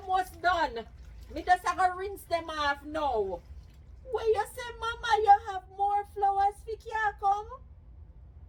done. Me just have to rinse them off now. Where you say, mama, you have more flowers for you come?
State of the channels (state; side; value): identical; both; correlation 1.00